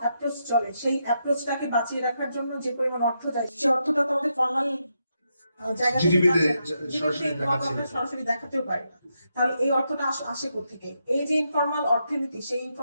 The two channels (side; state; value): both; inverted; correlation -0.82